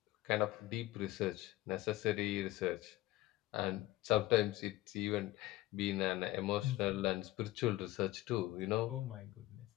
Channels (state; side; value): quieter; right; 17.0 dB